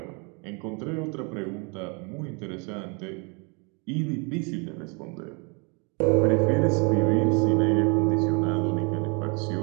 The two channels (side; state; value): left; quieter; 33.1 dB